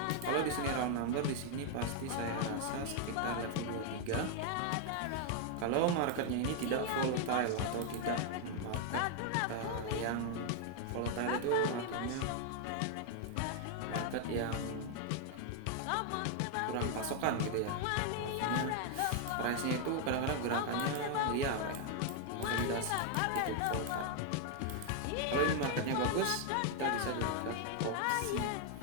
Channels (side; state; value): both; different; correlation 0.00